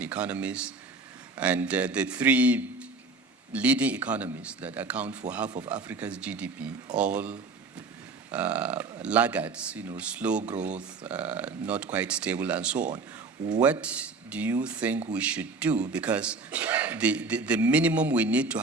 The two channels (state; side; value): quieter; left; 4.0 dB